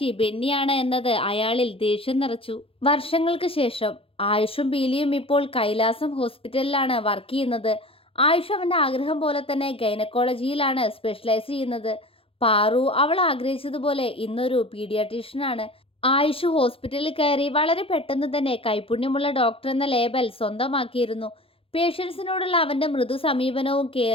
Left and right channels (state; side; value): late; right; 0.27 ms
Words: ബെന്നിയാണ് എന്നത് അയാളിൽ ദേഷ്യം നിറച്ചു. വർഷങ്ങൾക്ക് ശേഷം ആയുഷും പീലിയും ഇപ്പോൾ കൈലാസം ഹോസ്പിറ്റലിലാണ് വർക്ക് ചെയ്യുന്നത്. ആയുഷ് അവൻ്റെ ആഗ്രഹം പോലെ തന്നെ ഗൈനക്കോളജിയിലാണ് സ്പെഷ്യലൈസ് ചെയ്യുന്നത്. പാറു അവൾ ആഗ്രഹിച്ചതുപോലെ ഇന്നൊരു പീഡിയാട്രീഷ്യനാണ്. ആയുഷ് ഹോസ്പിറ്റലിൽ കയറി വളരെ പെട്ടെന്ന് തന്നെ കൈപുണ്യമുള്ള ഡോക്ടർ എന്ന ലേബൽ സ്വന്തമാക്കിയിരുന്നു. പേഷ്യൻസിനോടുള്ള അവൻ്റെ മൃദു സമീപനവും